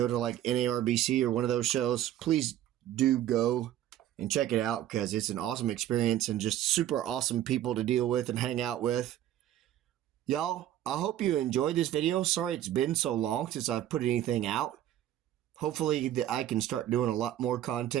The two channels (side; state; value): left; quieter; 12.2 dB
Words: to like NARBC or one of those shows, please do go and check it out because it's an awesome experience and just super awesome people to deal with and hang out with. Y'all, I hope you enjoyed this video. Sorry it's been so long since I've put anything out. Hopefully I can start doing a lot more